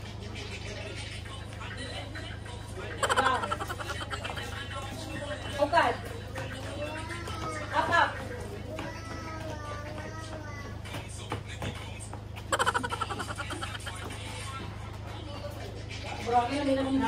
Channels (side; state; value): both; identical; correlation 1.00